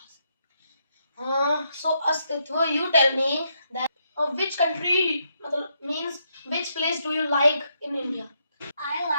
So, Astitwa, you tell me that which country means which place do you like in India? I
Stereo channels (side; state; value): both; inverted; correlation -0.78